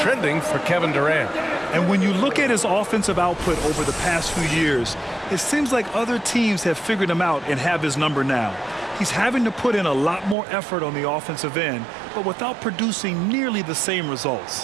for Kevin Durant. And when you look at his offensive output over the past few years, it seems like other teams have figured him out and have his number now. He's having to put in a lot more effort on the offensive end, but without producing nearly the same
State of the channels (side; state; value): left; drops out; at 10.4 s